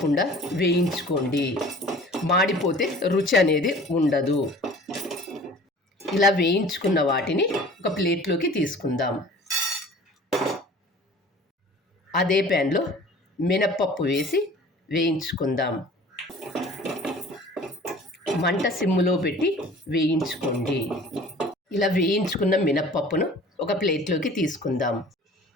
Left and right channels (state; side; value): normal; both; correlation 0.46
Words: వేయించుకోండి. మాడిపోతే రుచి అనేది ఉండదు. ఇలా వేయించుకున్న వాటిని ఒక ప్లేట్లోకి తీసుకుందాం. అదే ప్యాన్లో మినప్పప్పు వేసి వేయించుకుందాం. మంట సిమ్ములో పెట్టి వేయించుకోండి. ఇలా వేయించుకున్న మినప్పప్పును ఒక ప్లేట్లోకి తీసుకుందాం.